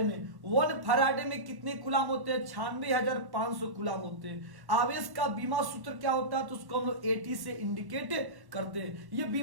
में। 1 फैराडे में कितने कूलाम होते हैं, 96,500 कूलाम होते हैं। आवेश का बीमा सूत्र क्या होता है, तो उसको हम लोग AT से इंडिकेट करते हैं। ये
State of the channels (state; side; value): late; left; 1.1 ms